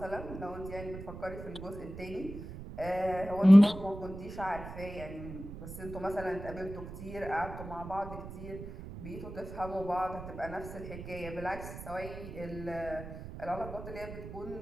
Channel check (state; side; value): noise; right; rumble, 11 dB below the sound